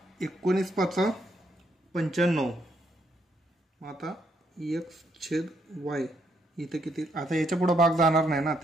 19 5 95. मग आता x/y इथे किती, आता याच्या पुढे भाग जाणार नाही ना,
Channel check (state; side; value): normal; both; correlation 0.74